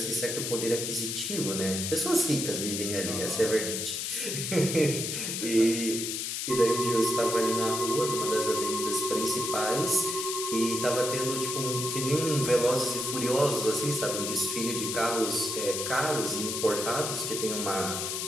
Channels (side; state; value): left; noise; hiss, 3 dB below the sound